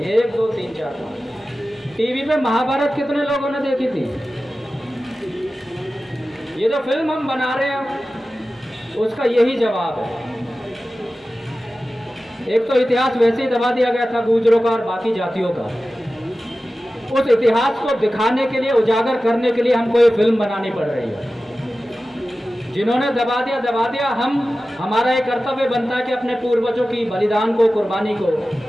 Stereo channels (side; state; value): both; normal; correlation 0.95